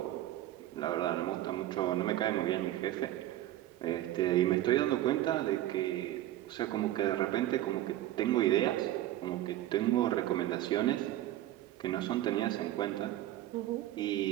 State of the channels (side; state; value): left; quieter; 14.2 dB